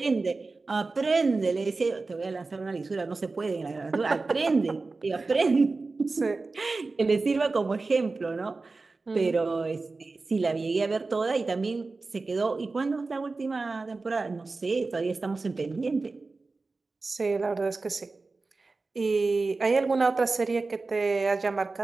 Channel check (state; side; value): quieter; left; 3.7 dB